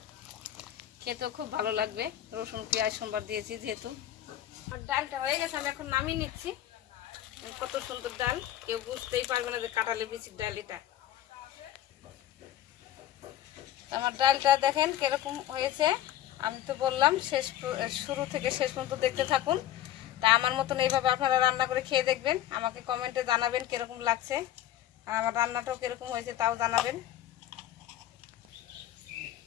খেতেও খুব ভালো লাগবে, রসুন পেঁয়াজ সোমবার দিয়েছি যেহেতু। আর ডালটা হয়ে গেছে, আমি এখন নামিয়ে নিচ্ছি। কত সুন্দর ডাল, কেউ বুঝতেই পারবে না যে কাঁঠালের বিচির ডাল এটা। আমার ডালটা দেখেন কিরকম হয়েছে, আমি তো বললাম শুরু থেকে শেষ পর্যন্ত দেখতে থাকুন। তা আমার মতন এইভাবে আপনারা রান্না করে খেয়ে দেখবেন, আমাকে কমেন্টে জানাবেন কিরকম লাগছে, আর আমার রান্নাটাও কিরকম হয়েছে তাও জানাবেন।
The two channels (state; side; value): quieter; right; 12.4 dB